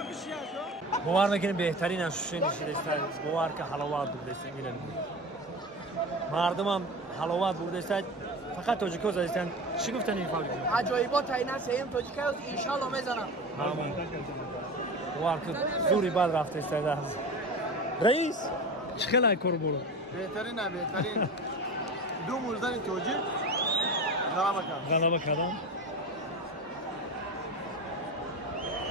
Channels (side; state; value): both; normal; correlation 0.30